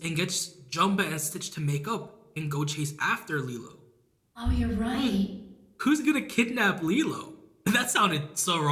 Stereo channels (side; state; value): both; identical; correlation 1.00